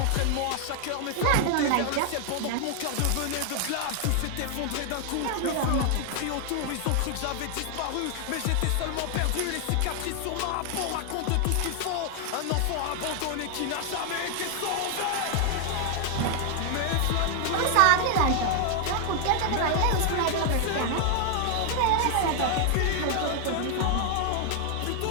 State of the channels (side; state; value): both; different; correlation 0.00